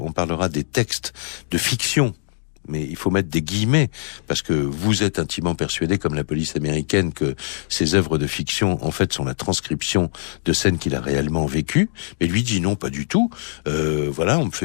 on parlera des textes de fiction mais il faut mettre des guillemets, parce que vous êtes intimement persuadé, comme la police américaine, que ces œuvres de fiction, en fait, sont la transcription de scènes qu'il a réellement vécues. Mais lui dit non, pas du tout. Voilà, on me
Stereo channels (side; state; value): right; silent; digital silence